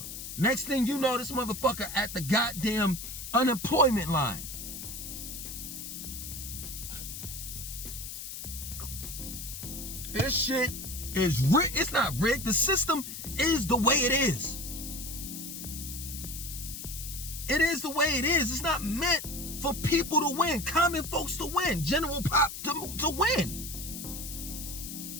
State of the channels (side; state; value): left; noise; hiss, 8 dB below the sound